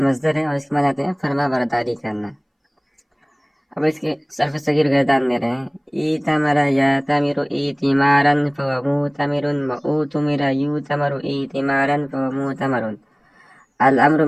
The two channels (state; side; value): identical; both; correlation 1.00